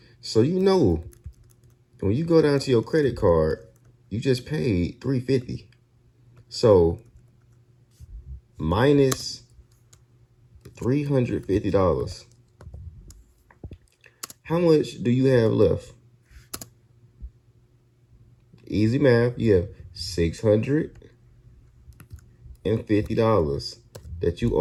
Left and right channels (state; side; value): identical; both; correlation 1.00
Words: So you know, when you go down to your credit card, you just paid $350. So, minus $350. How much do you have left? Easy math. You have $650 that you